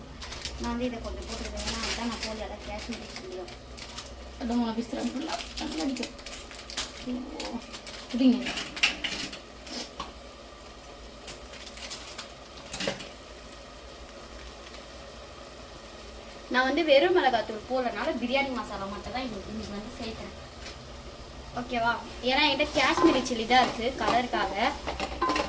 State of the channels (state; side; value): identical; both; correlation 1.00